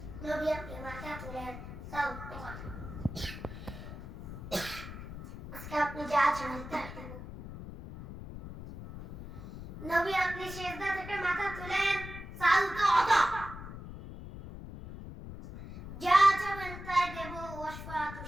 নবী আপনি মাথা তুলেন, যাও তোমার আজকে আপনি যা চান তাই দেব। নবী আপনি সিজদা থেকে মাথা তুলেন, সাল তো আদা, যা চাবেন তাই দেব। ওয়াশফা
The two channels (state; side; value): noise; left; rumble, 11 dB below the sound